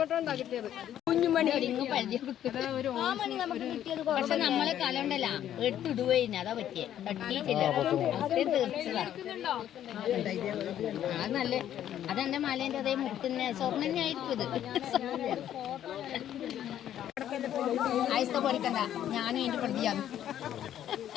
കിട്ടിയത്. കുഞ്ഞുമണി പക്ഷെ നമ്മളെ കലണ്ടല്ല എടുത്തിടുവേന് അതാ പറ്റിയ തട്ടിയിട്ടില്ല. തീർച്ചതാ അത് നല്ല അതെന്റെ മലേന്റെ അതേ മുട്ടിന് സ്വർണ്ണന്നെ ആയിരിക്കും ഇത്. ആയിസ്ത പൊടിക്കണ്ട, ഞാനും എന്റെ പ്രതിയാണ്.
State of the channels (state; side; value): quieter; right; 11.0 dB